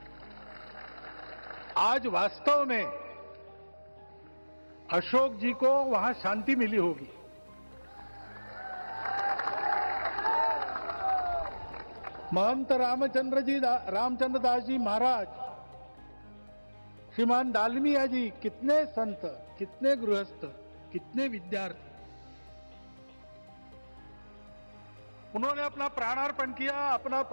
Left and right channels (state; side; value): inverted; both; correlation -1.00